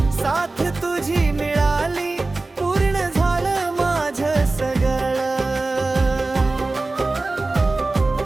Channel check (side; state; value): left; quieter; 3.3 dB